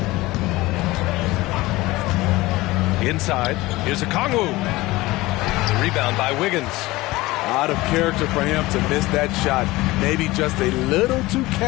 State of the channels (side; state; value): right; quieter; 19.6 dB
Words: Inside, here's Okongwu. Rebound by Wiggins. Out of character for him to miss that shot. Maybe just a little too